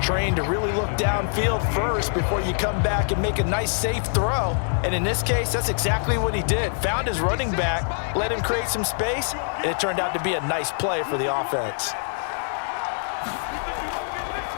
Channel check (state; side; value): silent; right; digital silence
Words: to really look downfield first before you come back and make a nice, safe throw. And in this case, that's exactly what he did. Found his running back, let him create some space, and it turned out to be a nice play for the offense.